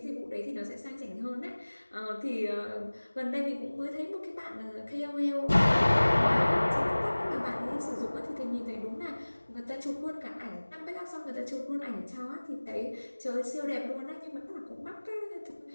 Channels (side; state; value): both; inverted; correlation -1.00